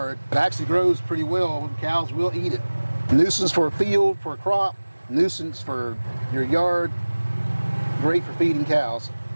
It actually grows pretty well, and cows will eat it. Nuisance for a field, for a crop, nuisance for your yard, great for feeding cows.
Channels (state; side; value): inverted; both; correlation -1.00